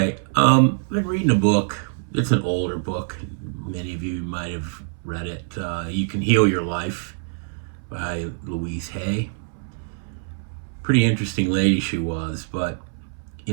I've been reading a book. It's an older book. Many of you might have read it. You Can Heal Your Life by Louise Hay. Pretty interesting lady she was, but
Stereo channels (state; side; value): silent; left; 63 dB below the other